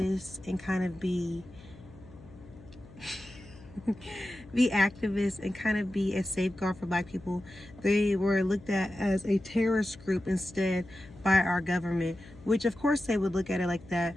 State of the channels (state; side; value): noise; left; hum, 21 dB below the sound